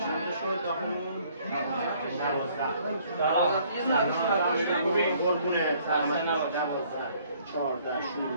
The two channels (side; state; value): both; inverted; correlation -0.61